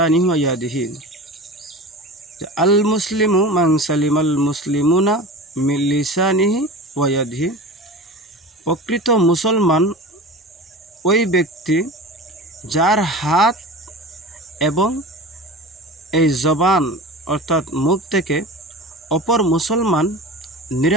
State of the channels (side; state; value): both; normal; correlation 0.33